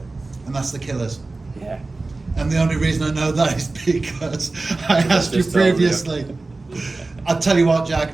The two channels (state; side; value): quieter; left; 3.4 dB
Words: And that's the Killers? Yeah. And the only reason I know that is because I asked you previously. I'll tell you what,